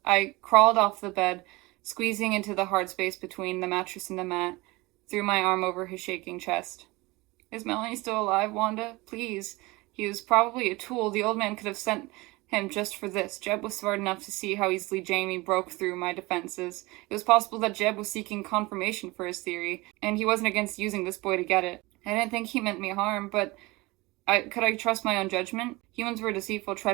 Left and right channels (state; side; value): quieter; left; 22.6 dB